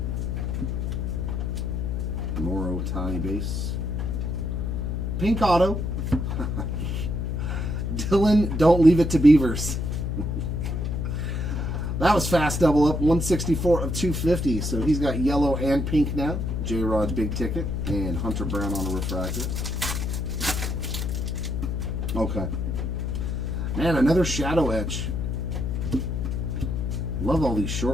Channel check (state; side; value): noise; left; hum, 1 dB below the sound